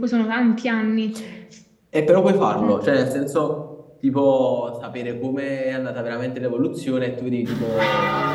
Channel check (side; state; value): both; identical; correlation 1.00